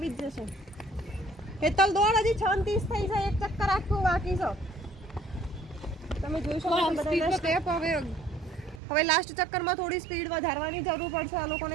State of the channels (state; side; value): drops out; left; at 8.8 s